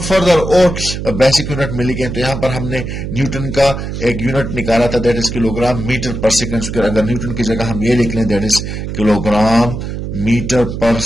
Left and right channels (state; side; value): noise; right; hum, 6 dB below the sound